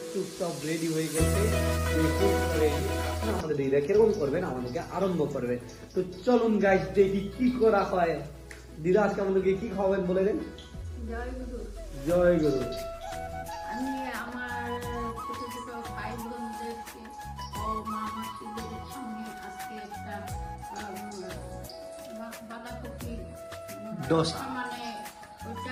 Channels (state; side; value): identical; both; correlation 1.00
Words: চুপচাপ রেডি হয়ে গেছে। আমাদের দিদা কিরকম করবেন আমাদেরকে আরম্ভ করবেন। তো চলুন গাইস দেখি কি করা হয়। দিদা আজকে আমাদেরকে কি খাওয়াবেন বলে দেন। জয় গুরু। জয় গুরু। আমি আমার ছোট ছোট ভাই বোনদেরকে ও মা মাসিদের সামনে আজকে একটা বাঁধাকপি ডোসা। মানে